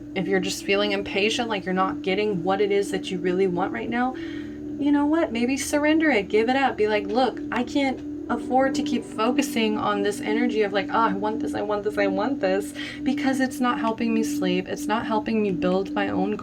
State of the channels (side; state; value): both; identical; correlation 1.00